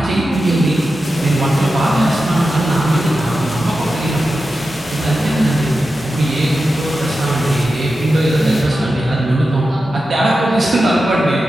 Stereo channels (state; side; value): normal; both; correlation 0.91